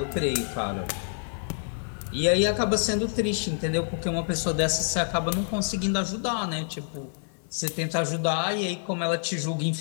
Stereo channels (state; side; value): silent; right; digital silence